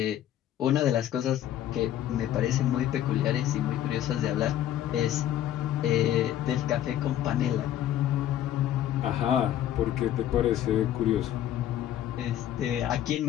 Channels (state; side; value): quieter; right; 11.7 dB